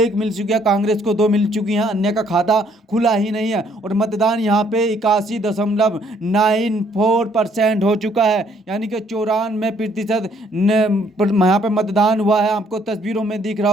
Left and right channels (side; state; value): both; normal; correlation 0.65